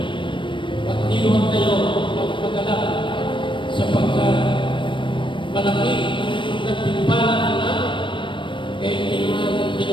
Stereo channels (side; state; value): right; late; 0.24 ms